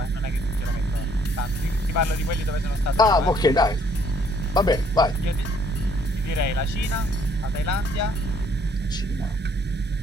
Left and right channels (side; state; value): both; normal; correlation 0.64